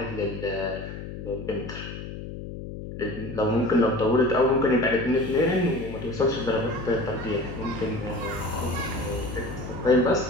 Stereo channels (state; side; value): noise; left; hum, 9 dB below the sound